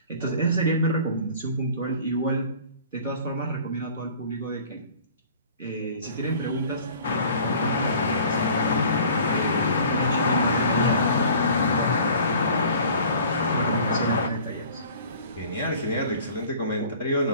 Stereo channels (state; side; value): inverted; both; correlation -0.48